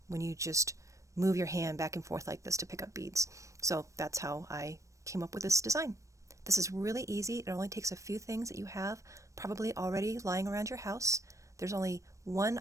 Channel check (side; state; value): left; late; 0.15 ms